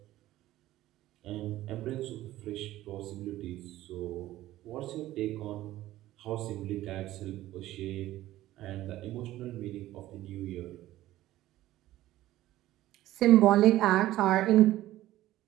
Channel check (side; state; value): left; quieter; 15.1 dB